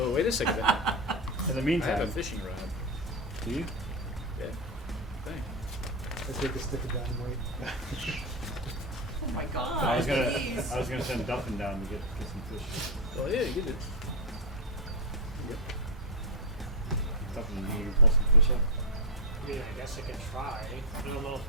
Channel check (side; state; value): both; normal; correlation 0.03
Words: wait a second. in the I have a meantime, fishing rod. do you? Yeah. Thanks. I take a stick of dynamite. Oh my god! I was please. gonna send Duffin down to get some fish. Well, yeah, you did. Duffin, you pull some fish up. I mean, I guess I could try. I don't know if